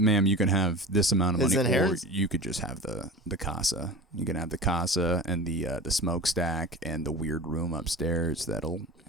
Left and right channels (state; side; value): normal; both; correlation 0.32